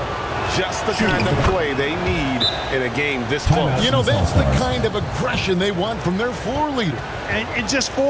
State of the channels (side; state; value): both; identical; correlation 1.00